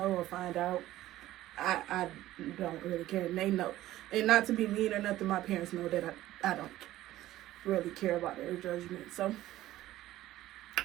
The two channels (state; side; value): quieter; left; 15.0 dB